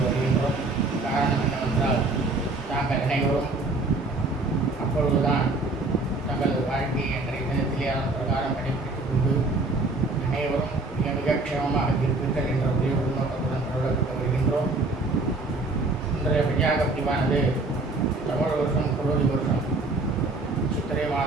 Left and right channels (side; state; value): left; quieter; 3.2 dB